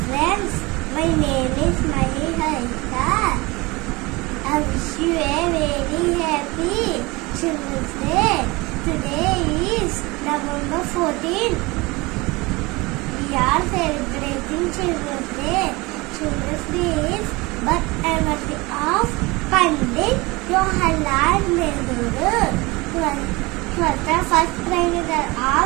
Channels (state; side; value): quieter; left; 23.5 dB